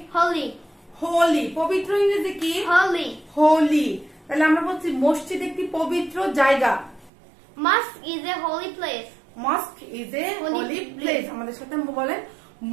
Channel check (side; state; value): left; drops out; at 7.1 s